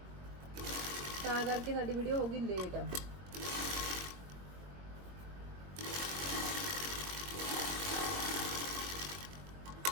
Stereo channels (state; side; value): late; left; 21 ms